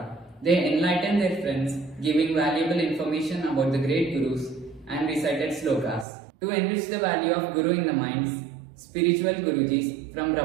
They enlightened their friends, giving valuable information about the great gurus and recited slokas. To enrich the value of Guru in the minds, spiritual Gurujis from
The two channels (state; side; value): drops out; left; at 6.1 s